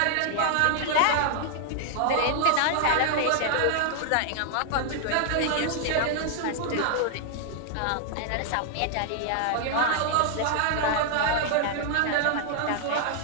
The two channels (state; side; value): different; both; correlation 0.00